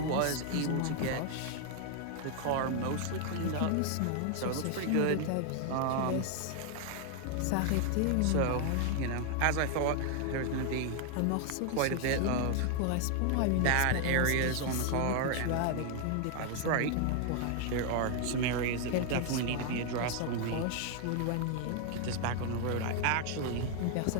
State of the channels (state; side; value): different; both; correlation 0.00